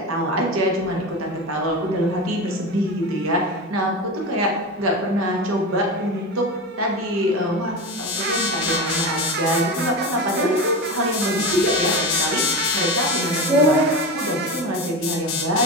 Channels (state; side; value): normal; both; correlation 0.23